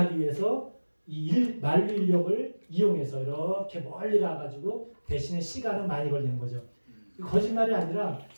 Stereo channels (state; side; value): inverted; both; correlation -1.00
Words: 위해서 만류 인력을 이용해서 이렇게 멀리 가가지고 대신에 시간은 많이 걸리는 거죠. 거짓말이 아니라